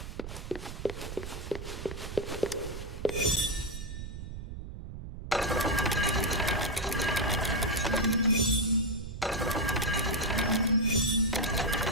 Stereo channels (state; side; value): noise; right; rumble, 9 dB below the sound